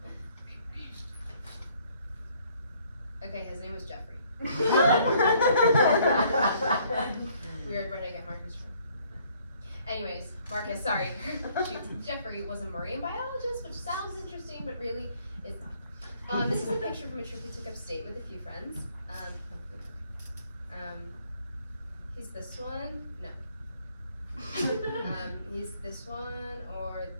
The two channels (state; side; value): inverted; both; correlation -0.63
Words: okay, his name was Jeffrey. Weird, where did I get Marcus from? Anyways, Marcus, sorry. Jeffrey was a marine biologist, which sounds interesting, but really is not. This is a picture from a trip we took upstate with a few friends. He's this one. No. He's this one or